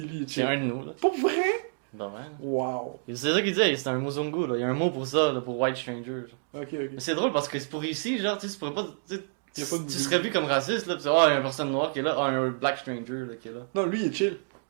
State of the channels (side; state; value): left; silent; digital silence